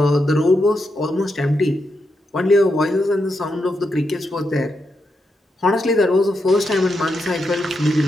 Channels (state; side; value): normal; both; correlation 0.84